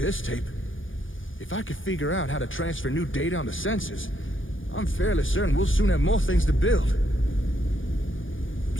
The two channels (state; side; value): late; right; 0.58 ms